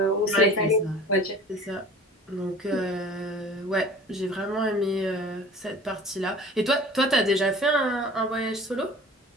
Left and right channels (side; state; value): both; normal; correlation 0.44